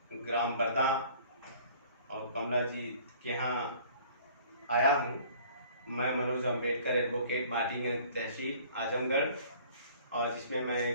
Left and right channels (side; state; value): both; inverted; correlation -0.52